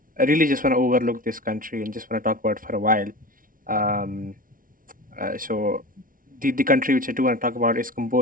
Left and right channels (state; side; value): late; left; 0.40 ms